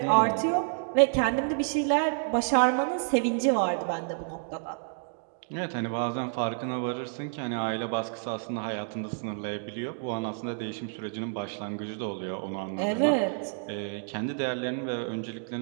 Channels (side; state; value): left; silent; digital silence